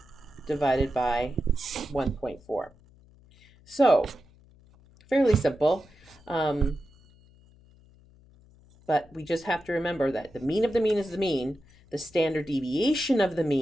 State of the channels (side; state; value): left; noise; hum, 27 dB below the sound